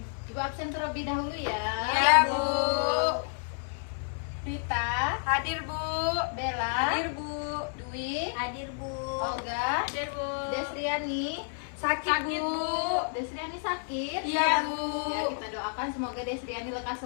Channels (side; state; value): right; silent; 58 dB below the other